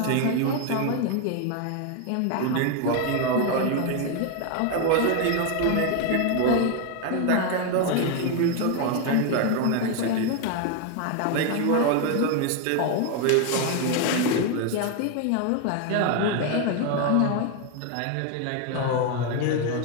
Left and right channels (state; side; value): different; both; correlation 0.01